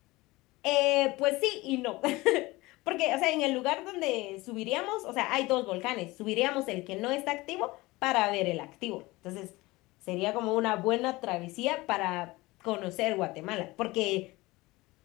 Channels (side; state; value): right; quieter; 21.0 dB